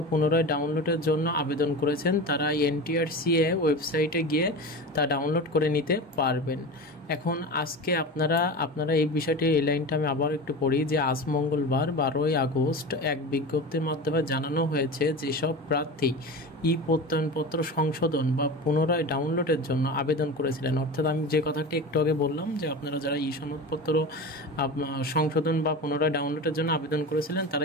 পুনরায় ডাউনলোডের জন্য আবেদন করেছেন তারা NTRCA ওয়েবসাইটে গিয়ে তা ডাউনলোড করে নিতে পারবেন। এখন আজকে আপনারা এই বিষয়টি, এই লাইনটা আমি আবার একটু পড়ি যে আজ মঙ্গলবার 12ই আগস্ট এক বিজ্ঞপ্তির মাধ্যমে জানানো হয়েছে যেসব প্রার্থী প্রত্যয়নপত্র সংশোধন বা পুনরায় ডাউনলোডের জন্য আবেদন করেছিলেন, অর্থাৎ আমি যে কথাটি একটু আগে বললাম যে আপনারা যারা সনদপত্র সংশোধন বা পুনরায় ডাউনলোডের জন্য আবেদন করেছিলেন তারা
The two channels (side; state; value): both; normal; correlation 0.29